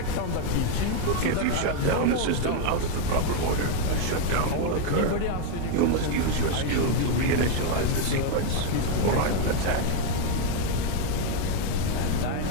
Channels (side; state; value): both; different; correlation 0.01